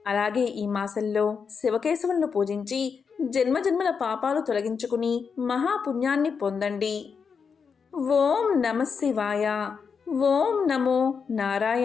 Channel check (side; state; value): right; quieter; 5.9 dB